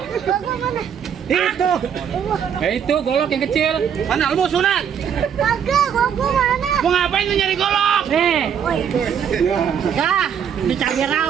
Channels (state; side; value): quieter; left; 8.1 dB